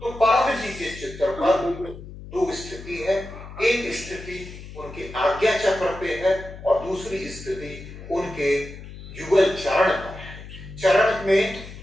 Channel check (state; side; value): noise; left; hum, 14 dB below the sound